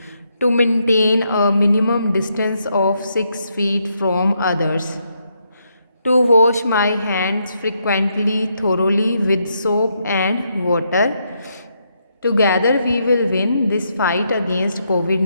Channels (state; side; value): inverted; both; correlation -0.78